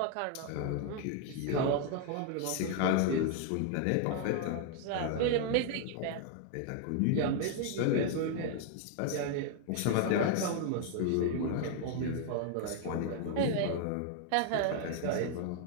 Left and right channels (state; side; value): different; both; correlation 0.00